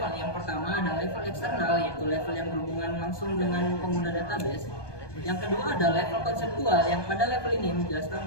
Yang pertama ada level eksternal, yaitu level yang berhubungan langsung dengan pengguna database. Yang kedua ada level konseptual, yang pada level ini menjelaskan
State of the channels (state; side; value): late; right; 1.2 ms